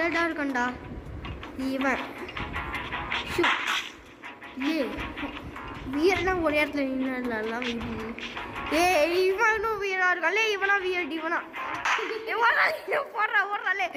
இருக்கண்டா இவன். வியர்னா ஒரு இடத்துல நின்றுலாம் இவனும் வியரா இருக்கான். இவனா வியர்ட் இவனா போடுறா ஓடுறா லே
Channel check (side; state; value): both; identical; correlation 1.00